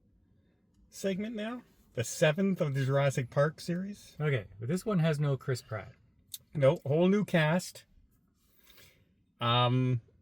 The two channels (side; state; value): both; identical; correlation 1.00